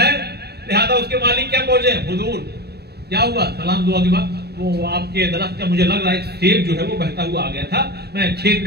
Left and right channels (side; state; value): left; late; 0.47 ms